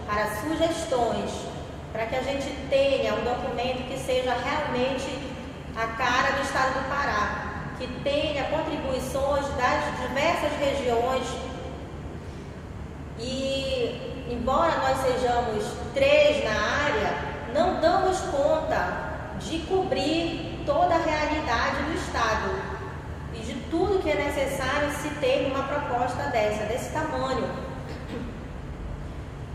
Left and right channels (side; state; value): both; identical; correlation 1.00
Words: para sugestões, para que a gente tenha um documento que seja realmente a cara do estado do Pará, que tenha contribuições das diversas regiões. E, embora nós sejamos 3 na área, não damos conta de cobrir toda a realidade do estado e de tudo que é necessário se ter uma proposta desse tamanho.